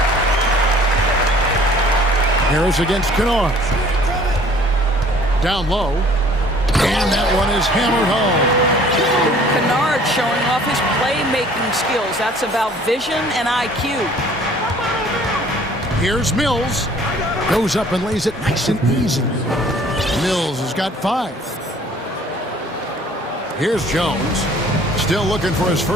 Harris against Kennard. Down low. And that one is hammered home. Kennard showing off his playmaking skills. That's about vision and IQ. Here's Mills. Goes up and lays it nice and easy. Mills has got 5. Here's Jones. Still looking for his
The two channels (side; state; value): both; normal; correlation 0.54